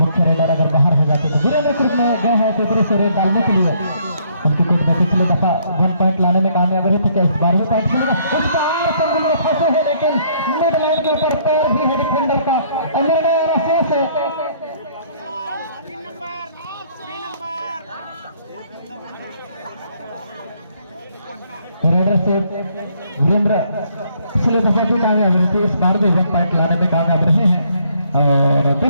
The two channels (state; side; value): inverted; both; correlation -0.66